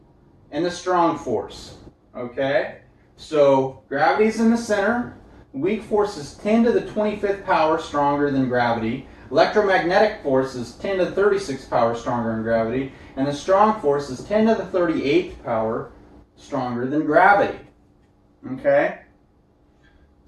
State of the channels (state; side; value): identical; both; correlation 1.00